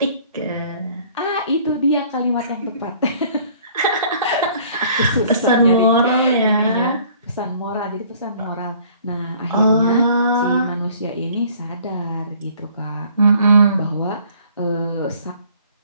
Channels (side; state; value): both; inverted; correlation -0.56